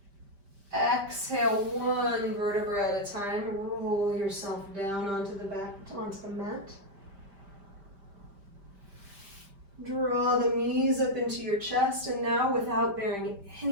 Exhale, 1 vertebra at a time. Roll yourself down onto the mat. Draw the knees up into your chest, and now without bearing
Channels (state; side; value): late; left; 5.1 ms